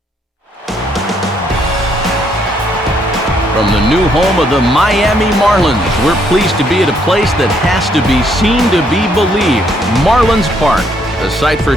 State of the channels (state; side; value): normal; both; correlation 0.70